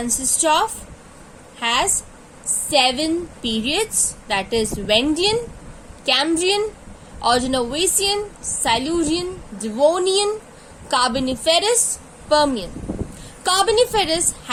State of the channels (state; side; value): identical; both; correlation 1.00